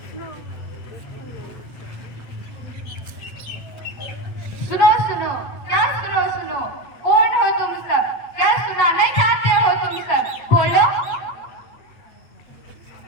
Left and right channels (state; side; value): late; right; 8.5 ms